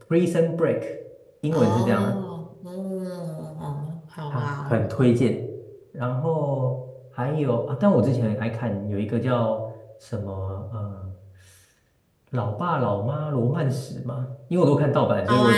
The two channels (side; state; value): both; identical; correlation 1.00